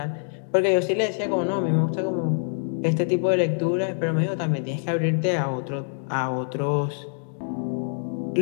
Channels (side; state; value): right; silent; digital silence